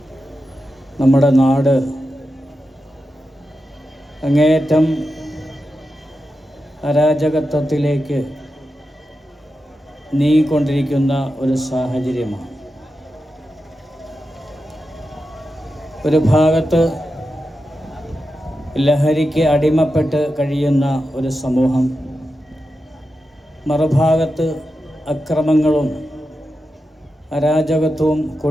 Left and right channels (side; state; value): both; normal; correlation 0.90